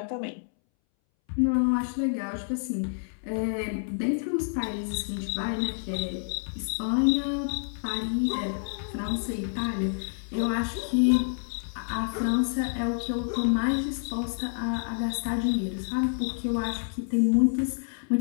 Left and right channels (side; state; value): right; silent; 59 dB below the other